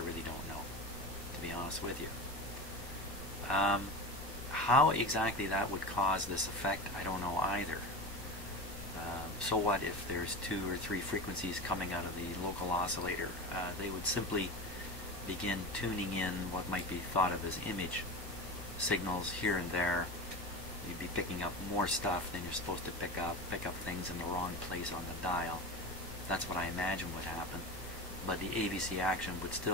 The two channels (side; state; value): right; late; 1.1 ms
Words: don't know, to be honest with you. How exactly that would cause this effect, I don't know either. So what if there's 2 or 3 frequencies coming out of the local oscillator? They would simply begin tuning in what might be thought of as image signals here and there. You'd be picking up more stuff than you're supposed to pick up things in the wrong place on the dial. That's what I imagine would happen. But the AVC action would